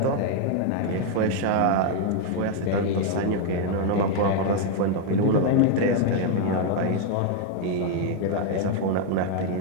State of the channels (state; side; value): different; both; correlation 0.00